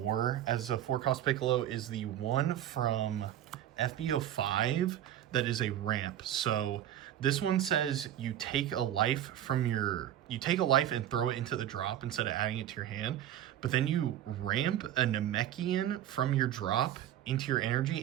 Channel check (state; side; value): quieter; left; 11.5 dB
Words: as a 4-cost Piccolo is the one from SB05 that is a ramp. So this one says you take a life and throw it into the drop instead of adding it to your hand, but then you ramp a Namekian from your drop into your